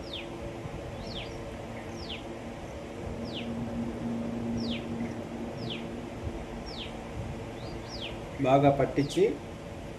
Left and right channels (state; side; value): identical; both; correlation 1.00